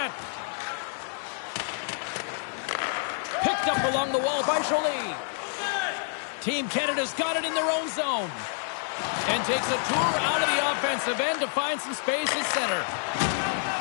Picked up along the wall by Jolie. Team Canada's got it in their own zone. And takes a tour out of the offensive end to find some space at center.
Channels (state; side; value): silent; right; 59 dB below the other